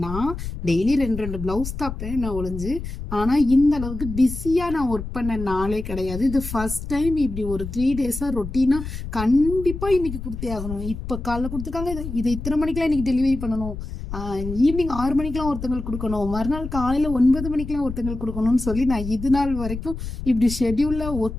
நான் டெய்லி ரெண்டு பிளவுஸ் தைப்பேன் நான் ஒளிஞ்சு. ஆனா இந்த அளவுக்கு பிஸியா நான் ஒர்க் பண்ண நாளே கிடையாது. இது ஃபர்ஸ்ட் டைம் இப்படி ஒரு 3 days ரொட்டீனா கண்டிப்பா இன்னைக்கு கொடுத்தே ஆகணும். இப்ப காலைல கொடுத்துருக்காங்க, இதை இத்தனை மணிக்கெல்லாம் இன்னைக்கு டெலிவரி பண்ணணும், ஈவினிங் 6 மணிக்கெல்லாம் ஒருத்தங்களுக்கு கொடுக்கணும், மறுநாள் காலையில 9 மணிக்கெல்லாம் ஒருத்தங்களுக்கு கொடுக்கணும்னு சொல்லி நான் இது நாள் வரைக்கும் இப்படி ஷெட்யூல்ல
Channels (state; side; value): noise; left; rumble, 8 dB below the sound